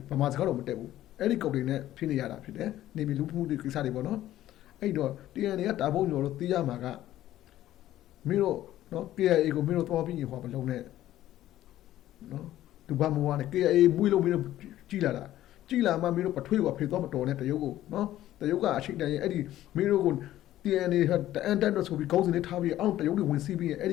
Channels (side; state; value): right; quieter; 13.6 dB